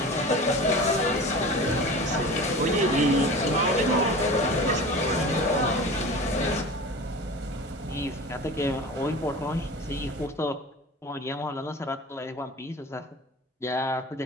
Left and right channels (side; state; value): both; normal; correlation 0.35